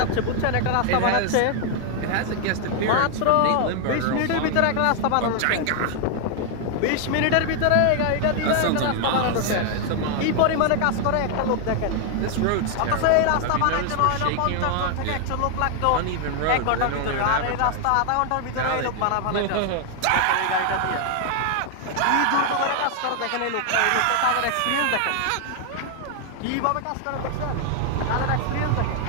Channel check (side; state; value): both; different; correlation 0.00